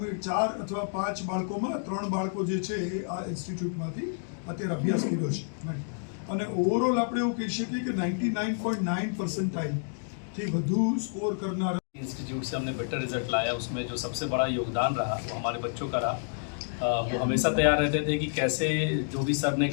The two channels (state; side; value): silent; right; digital silence